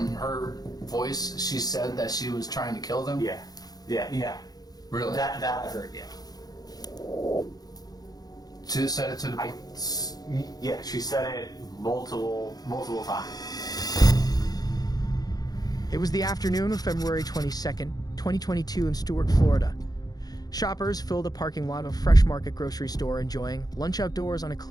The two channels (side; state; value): right; late; 0.19 ms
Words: her voice, she said that she was trying to kill them? Yeah. Really? That I heard, yeah. She just said it to the... Yeah, she said it multiple times. It was the afternoon of February 22nd, 2022 in Stuart, Florida. Shoppers filled a parking lot of a Fresh Market grocery store enjoying lunch outdoors on a